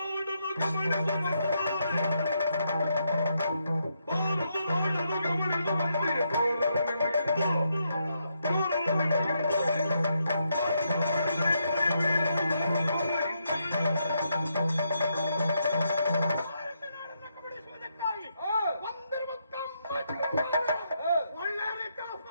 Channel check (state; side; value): inverted; both; correlation -0.79